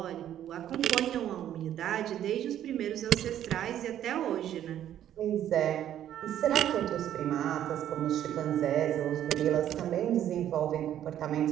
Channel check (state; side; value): quieter; left; 11.1 dB